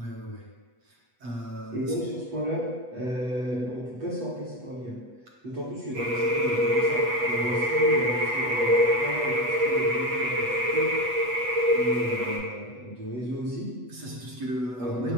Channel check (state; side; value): late; left; 8.1 ms